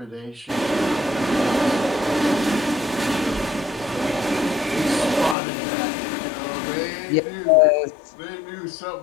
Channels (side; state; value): right; drops out; at 5.4 s